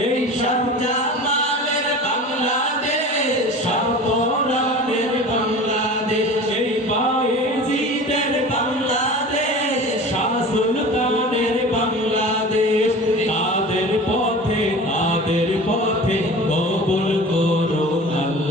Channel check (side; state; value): both; normal; correlation 0.37